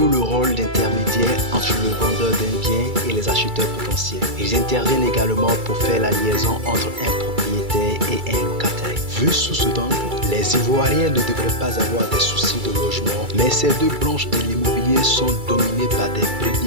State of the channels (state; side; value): late; left; 2.3 ms